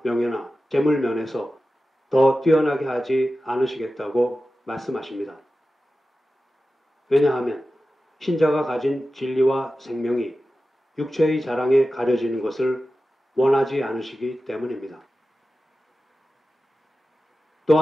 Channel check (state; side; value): normal; both; correlation 0.94